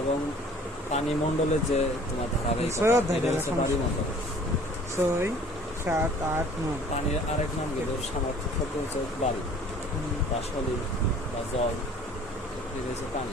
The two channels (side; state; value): both; normal; correlation 0.52